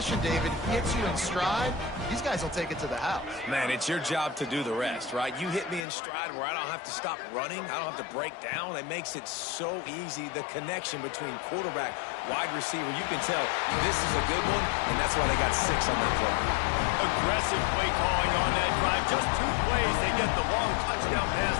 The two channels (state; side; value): drops out; right; at 5.9 s